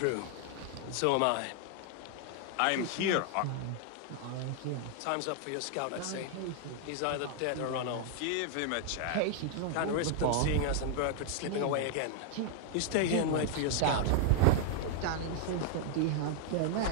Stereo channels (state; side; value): different; both; correlation 0.00